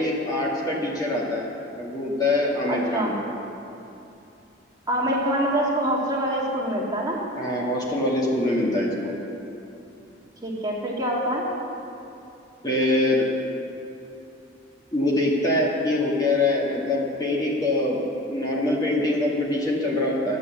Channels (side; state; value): both; normal; correlation 0.36